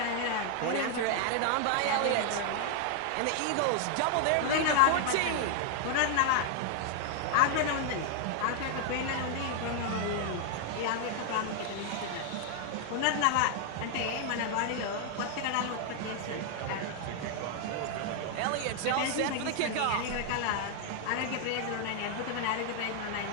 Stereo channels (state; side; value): different; both; correlation 0.00